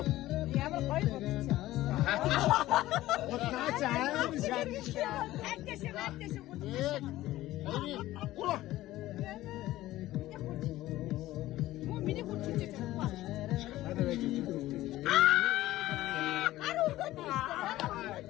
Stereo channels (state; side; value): quieter; right; 15.8 dB